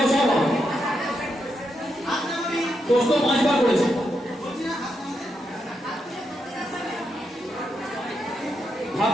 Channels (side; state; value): both; normal; correlation 0.83